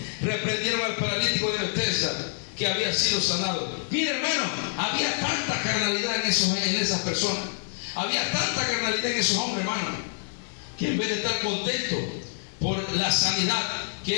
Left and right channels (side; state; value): right; silent; digital silence